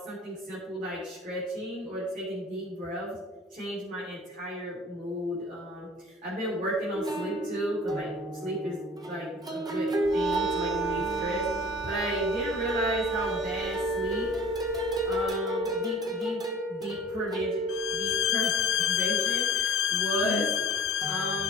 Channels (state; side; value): normal; both; correlation 0.45